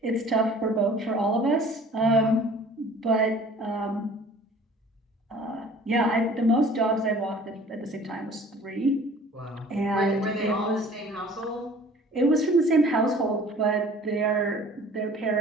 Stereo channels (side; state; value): both; normal; correlation 0.49